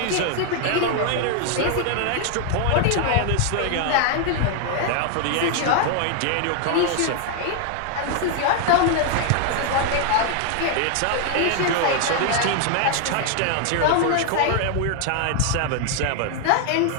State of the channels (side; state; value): both; different; correlation 0.00